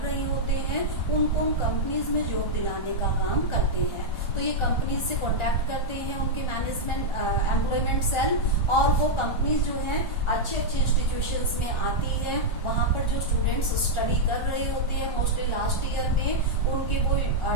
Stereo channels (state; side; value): late; right; 1.4 ms